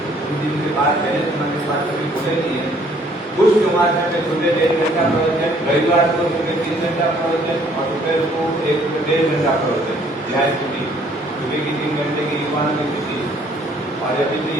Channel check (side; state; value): both; normal; correlation 0.61